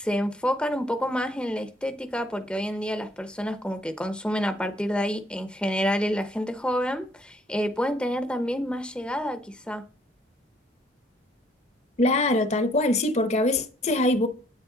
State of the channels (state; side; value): normal; both; correlation 0.65